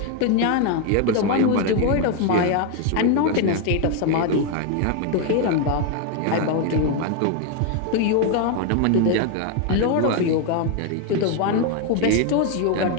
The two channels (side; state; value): both; different; correlation 0.01